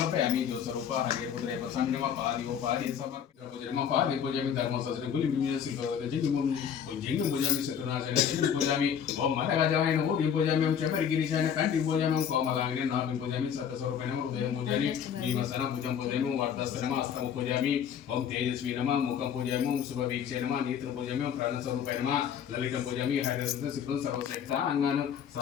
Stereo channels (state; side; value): quieter; right; 8.3 dB